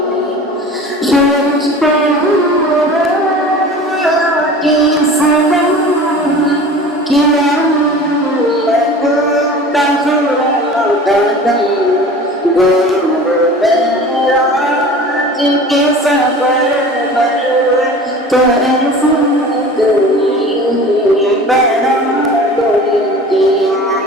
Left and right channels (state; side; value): normal; both; correlation 0.40